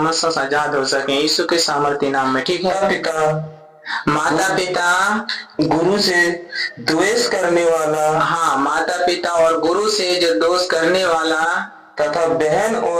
से आजाद हो सके यीशु के सामर्थ्य नाम में। ठीक है, माता पिता गुरु से द्वेष करने वाला, हाँ, माता पिता और गुरु से जो दोष करने वाला तथा बहन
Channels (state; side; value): identical; both; correlation 1.00